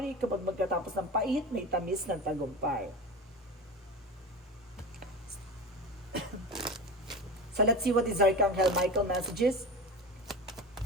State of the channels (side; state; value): both; normal; correlation 0.28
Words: Kapag magkatapos ng pait, may tamis ng tagumpay. So, let's see what is Archangel Michael messages.